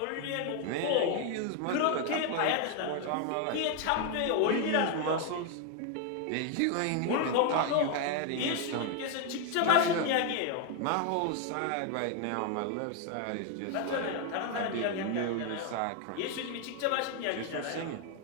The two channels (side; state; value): both; different; correlation 0.01